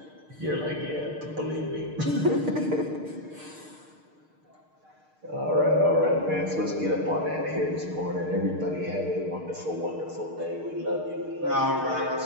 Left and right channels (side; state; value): left; late; 6.5 ms